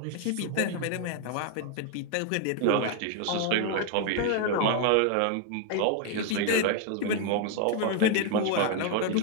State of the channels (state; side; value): different; both; correlation 0.01